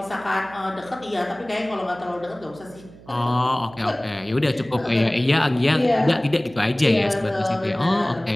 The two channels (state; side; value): noise; right; hum, 21 dB below the sound